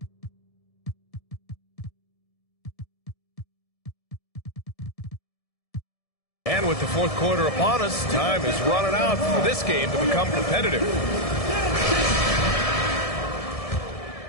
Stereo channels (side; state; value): right; late; 1.7 ms